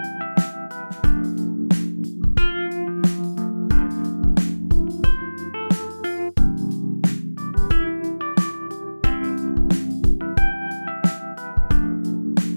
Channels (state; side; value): inverted; both; correlation -1.00